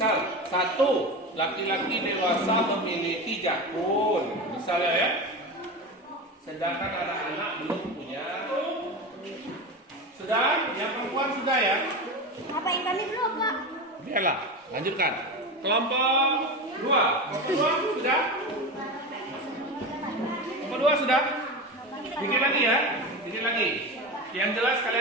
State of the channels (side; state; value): both; normal; correlation 0.24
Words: 1, laki-laki dewasa memiliki jakun, misalnya ya. Sedangkan anak-anak belum punya. Sudah? Yang perempuan sudah ya? Apa yang kami belum, Pak? Biarlah, lanjutkan. Kelompok 2. Kelompok 2 sudah? Kelompok 2 sudah? Bikin lagi ya? Bikin lagi. Yang jelas